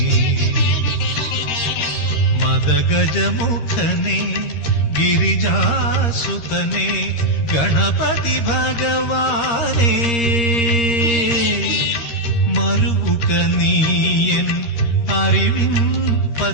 മദഗജമുഖനെ ഗിരിജാസുതനെ ഗണപതി ഭഗവാനേ മറുവുക നീയൻ അറിവിൻ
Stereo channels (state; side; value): late; right; 13 ms